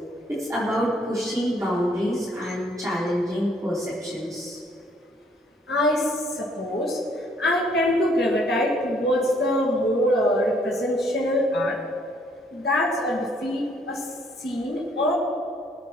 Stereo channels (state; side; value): normal; both; correlation 0.65